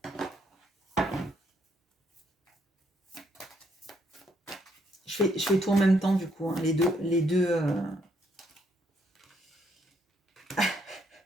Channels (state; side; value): normal; both; correlation 0.72